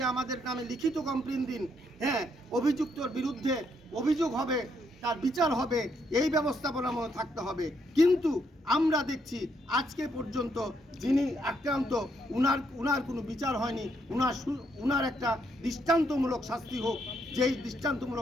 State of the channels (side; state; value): both; normal; correlation 0.75